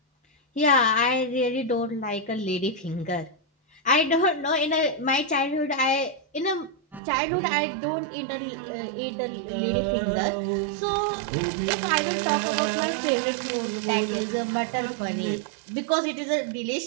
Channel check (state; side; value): drops out; left; at 7.0 s